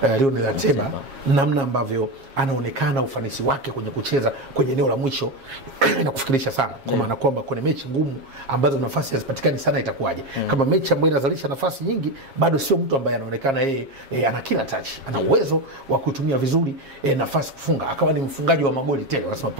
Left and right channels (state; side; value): late; left; 7.4 ms